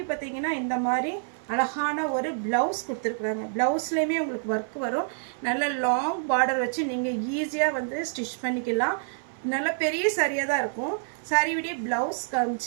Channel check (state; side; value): silent; left; 60 dB below the other